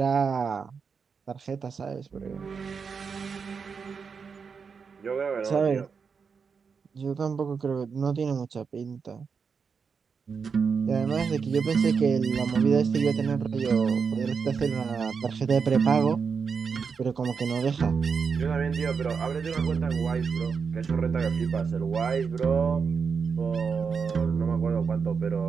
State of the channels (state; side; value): quieter; left; 5.8 dB